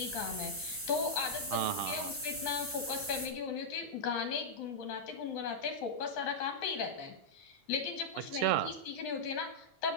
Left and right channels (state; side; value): normal; both; correlation -0.07